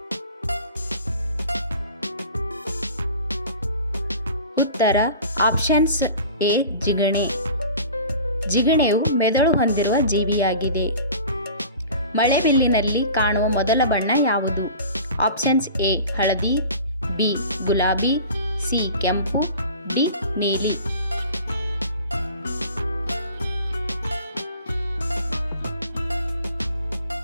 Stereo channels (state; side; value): inverted; both; correlation -0.41